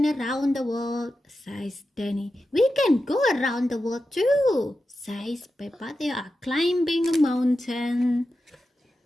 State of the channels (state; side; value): normal; both; correlation 0.91